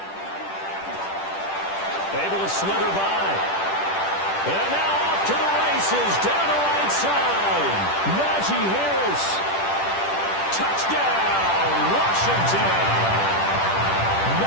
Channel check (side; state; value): right; late; 10 ms